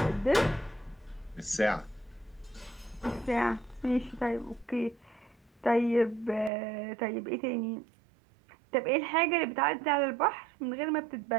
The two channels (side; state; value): left; drops out; at 6.5 s